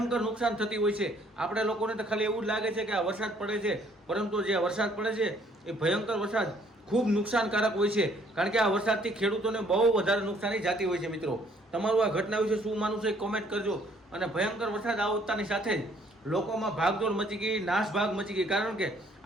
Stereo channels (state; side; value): normal; both; correlation 0.63